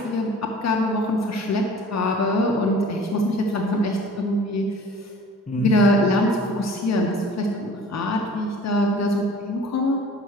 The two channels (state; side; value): normal; both; correlation 0.47